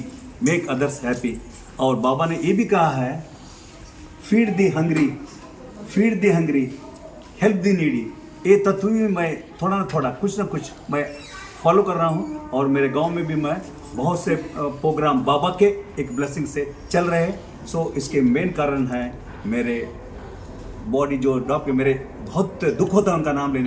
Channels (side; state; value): both; identical; correlation 1.00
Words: make others happy. और बाबा ने ये भी कहा है, फीड दी हंग्री, फीड दी हंग्री, हेल्प दी नीडी. ये तत्व भी मैं थोड़ा ना कुछ मैं फॉलो कर रहा हूँ. और मेरे गांव में भी मैं बहुत से प्रोग्राम बाबा के एक ब्लेसिंग से चल रहे हैं. सो इसके मेन कारण है मेरे बॉडी जो डॉक्टर, मेरे बहुत दुख होता है उनका नाम